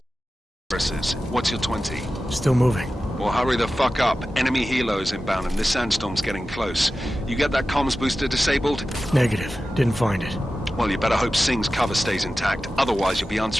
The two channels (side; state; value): both; normal; correlation 0.94